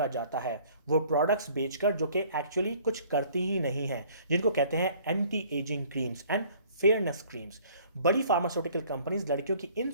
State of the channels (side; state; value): both; inverted; correlation -0.55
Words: जाता है वो प्रोडक्ट्स बेचकर जो कि एक्चुअली कुछ करती ही नहीं है, जिनको कहते हैं anti ageing creams and fairness creams. बड़ी फार्मास्यूटिकल कंपनीज लड़कियों की